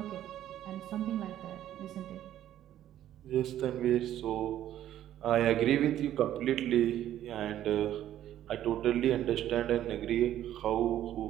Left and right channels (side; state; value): left; quieter; 12.0 dB